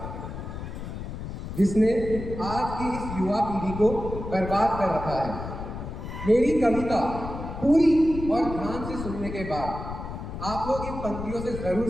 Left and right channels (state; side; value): noise; left; rumble, 8 dB below the sound